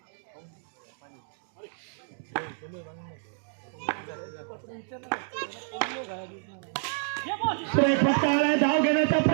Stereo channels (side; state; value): left; silent; digital silence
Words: फटका आलाय. धाव घेण्याचा